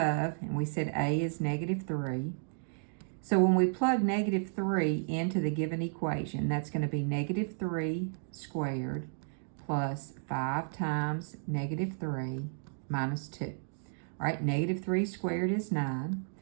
and we said A is -3. So when we plug -3 into the given equation, that's going to be -3 squared plus 5 times -3 minus 2. All right, -3 squared is 9.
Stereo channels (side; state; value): left; silent; digital silence